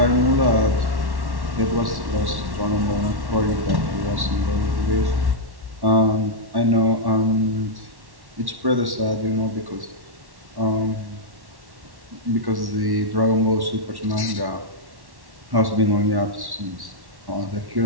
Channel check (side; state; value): left; late; 1.1 ms